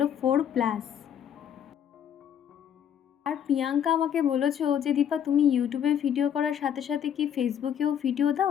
4+। আর প্রিয়াঙ্কা আমাকে বলেছো যে দীপা তুমি ইউটিউবে ভিডিও করার সাথে সাথে কি ফেসবুকেও ভিডিও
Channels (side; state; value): right; quieter; 9.0 dB